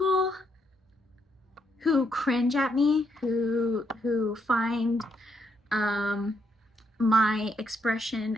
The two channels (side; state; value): both; normal; correlation 0.76